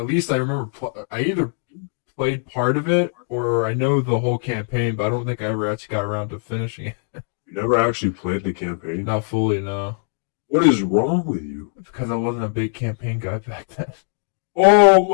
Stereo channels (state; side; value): silent; right; 65 dB below the other